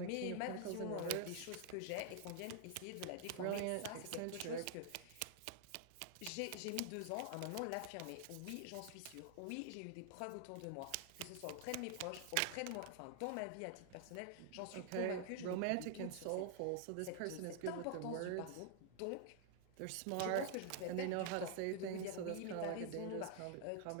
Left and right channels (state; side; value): different; both; correlation 0.00